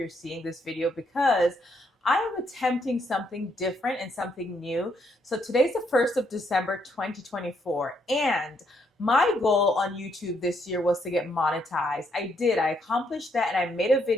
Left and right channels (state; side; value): normal; both; correlation 0.74